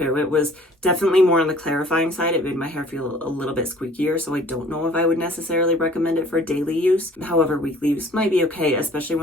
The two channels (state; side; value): normal; both; correlation 0.52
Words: It was definitely more on the clarifying side. It made my hair feel a little bit squeakier, so I don't know if I would necessarily recommend it for daily use. However, weekly use might be okay, especially